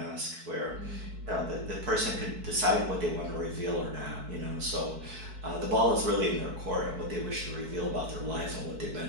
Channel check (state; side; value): late; left; 4.6 ms